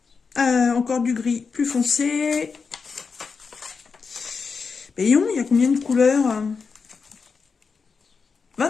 Encore du gris plus foncé. Voyons, il y a combien de couleurs?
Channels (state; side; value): quieter; right; 5.2 dB